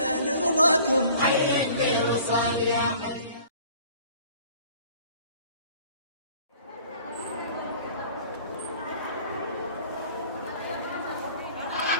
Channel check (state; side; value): inverted; both; correlation -0.50